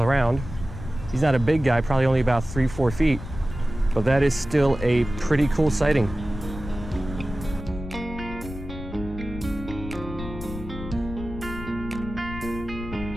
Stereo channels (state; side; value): noise; left; rumble, 10 dB below the sound